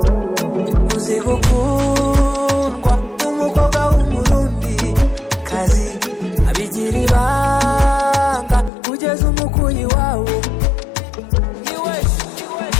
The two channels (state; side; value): drops out; right; at 8.7 s